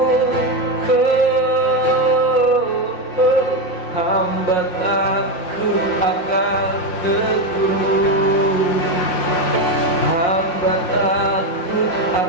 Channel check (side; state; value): right; late; 5.6 ms